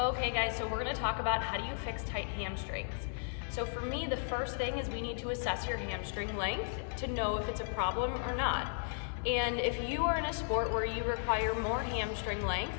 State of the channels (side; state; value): right; silent; 54 dB below the other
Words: guys, so we're gonna talk about how do you fix tight hamstrings. So for me, the first thing is we need to assess your hamstring length to know if it's a problem or not. And if you are in a sport where you require more hamstring length,